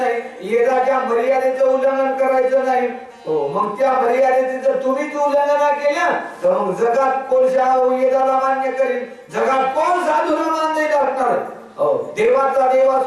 येदाच्या मर्यादेचं उल्लंघन करायचं नाही. हो, मग त्या मर्यादेचे जर तुम्हीच उल्लंघन केलं तर मग जगात कोण येदाला मान्य करेल, जगात कोण साधूला मान्य असणार. देवाचा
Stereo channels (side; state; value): both; identical; correlation 1.00